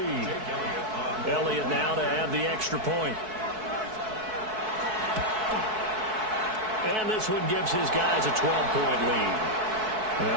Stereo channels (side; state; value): left; late; 4.6 ms